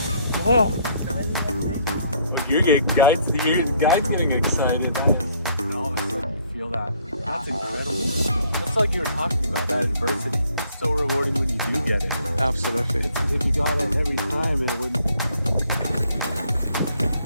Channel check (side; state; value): both; inverted; correlation -0.65